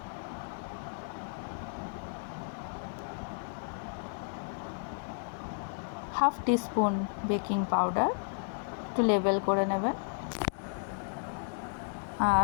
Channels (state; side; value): silent; right; 56 dB below the other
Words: হাফ টিস্পুন বেকিং পাউডার, একটু লেবেল করে নেবেন।